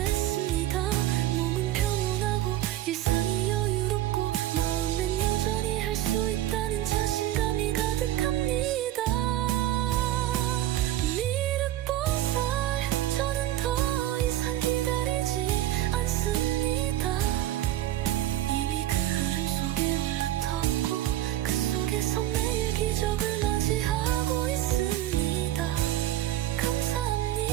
몸은 평온하고 일상이 여유롭고 마음엔 여전히 할 수 있다는 자신감이 가득합니다. 미륵보살, 저는 더 이상 기다리지 않습니다. 이미 그 흐름 속에 올라탔고 그 속에서 매일 기적을 맞이하고 있습니다.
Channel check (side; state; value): left; quieter; 13.6 dB